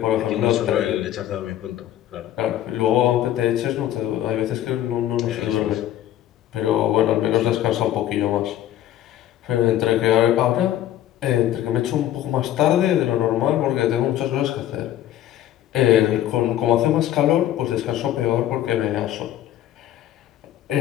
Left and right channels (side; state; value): right; quieter; 12.4 dB